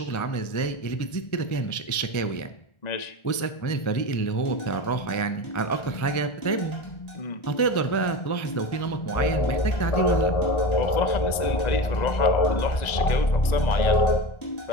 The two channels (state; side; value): late; right; 1.4 ms